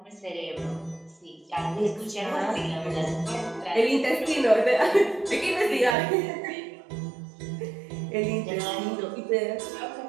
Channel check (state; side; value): drops out; left; at 6.0 s